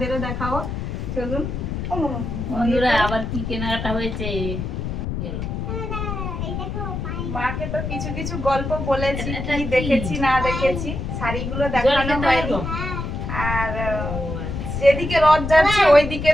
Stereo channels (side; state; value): left; noise; rumble, 4 dB below the sound